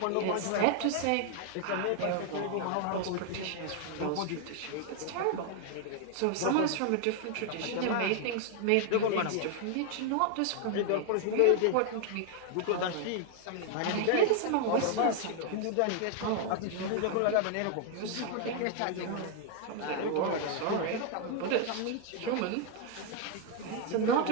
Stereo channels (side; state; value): both; different; correlation 0.00